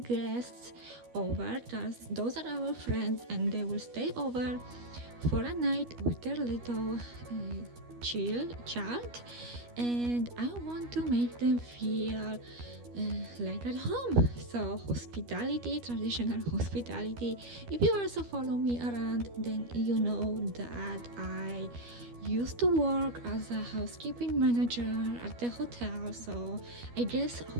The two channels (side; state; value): left; late; 12 ms